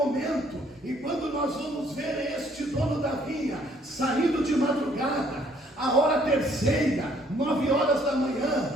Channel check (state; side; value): normal; both; correlation 0.63